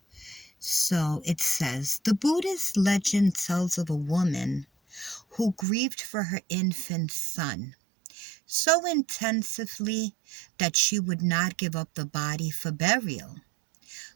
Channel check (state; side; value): drops out; left; at 5.7 s